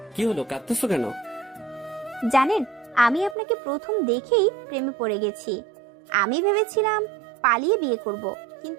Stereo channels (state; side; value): drops out; left; at 3.4 s